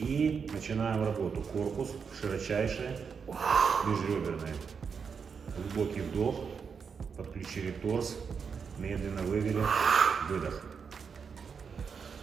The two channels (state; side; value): quieter; left; 6.1 dB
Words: начинаем работу. Корпус широчайший, межреберный. Глубокий вдох, подключили торс, медленно вывели, выдох.